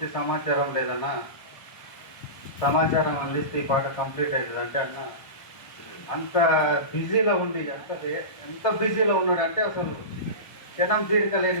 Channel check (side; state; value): right; late; 1.3 ms